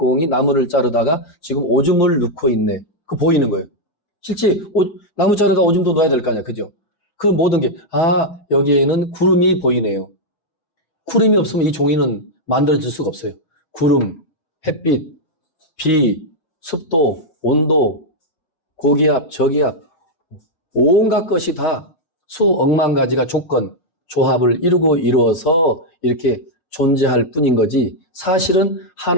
나무를 자르다가 지금 오줌을 넣고 있네. 그 보이는 거예요. 실제 나무 자르다 오줌도 넣어야 될 거 아니야, 그죠? 그 모든 게 여기에는 구름이 보이네요. 구름이 없으면 이 종이는 만들어질 수가 없어요. 구름, 햇빛, 비, 습도, 온도, 고기압, 저기압, 온갖 것이 다 수억만 가지가 조합을 이루어서 이렇게 존재할 뿐인 거지. 사실은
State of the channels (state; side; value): late; right; 5.9 ms